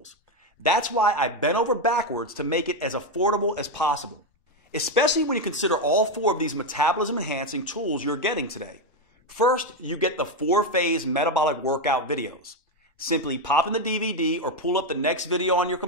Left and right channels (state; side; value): normal; both; correlation 0.07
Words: That's why I bent over backwards to make it as affordable as possible, especially when you consider all 4 of these metabolism-enhancing tools you're getting today. First, you get the 4-phase metabolic workout videos. Simply pop in the DVD or pull up the next video on your